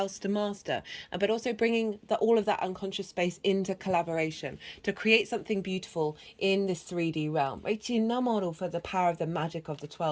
to master, but also bringing all of that unconscious space into collaboration to create something beautiful in this 3D realm. For the power of the magic of the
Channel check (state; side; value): identical; both; correlation 1.00